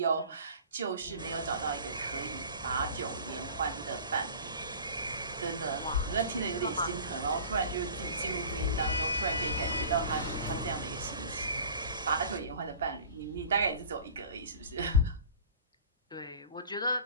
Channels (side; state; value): both; inverted; correlation -0.42